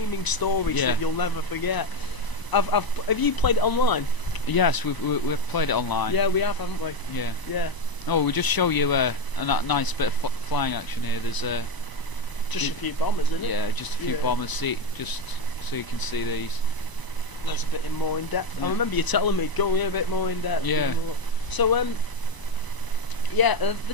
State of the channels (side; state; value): right; late; 1.0 ms